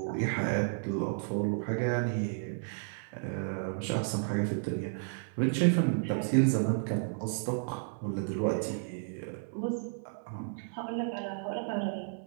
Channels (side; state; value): left; silent; 56 dB below the other